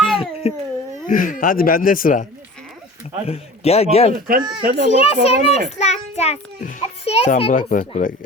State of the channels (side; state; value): both; normal; correlation 0.39